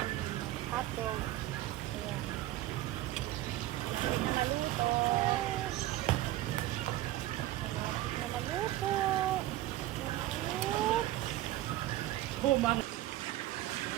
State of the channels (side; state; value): left; quieter; 15.4 dB